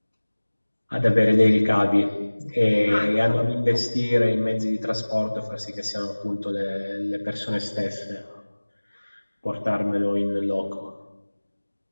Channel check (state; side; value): inverted; both; correlation -1.00